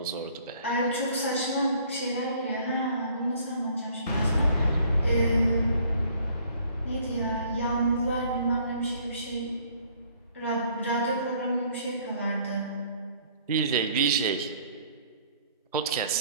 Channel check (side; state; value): both; inverted; correlation -0.59